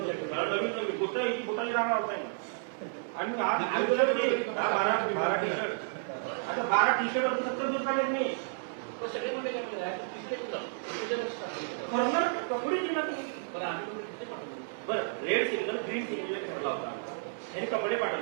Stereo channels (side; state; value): left; silent; digital silence